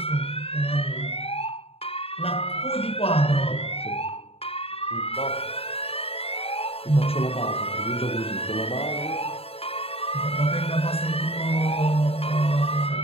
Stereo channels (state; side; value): late; right; 0.28 ms